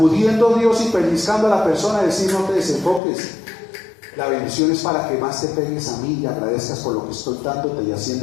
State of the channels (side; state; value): right; drops out; at 3.0 s